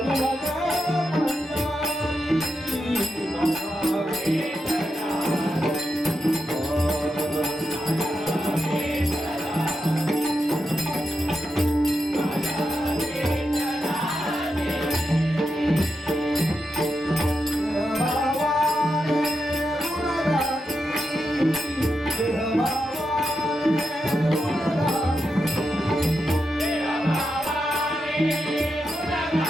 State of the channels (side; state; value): both; normal; correlation 0.86